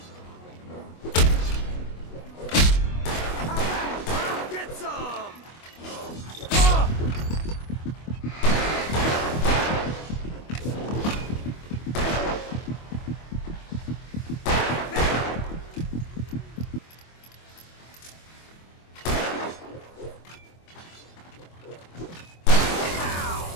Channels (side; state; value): right; late; 25 ms